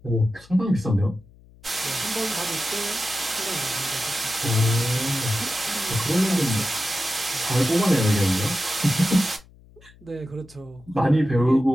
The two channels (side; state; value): left; noise; hum, 25 dB below the sound